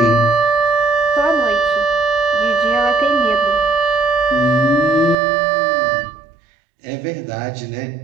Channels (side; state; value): left; drops out; at 5.2 s